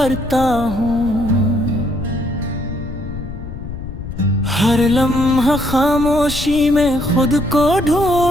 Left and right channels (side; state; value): left; noise; rumble, 9 dB below the sound